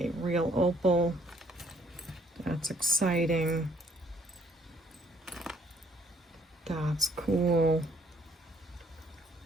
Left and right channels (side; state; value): both; normal; correlation 0.65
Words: real opal. That's exciting. That's cool.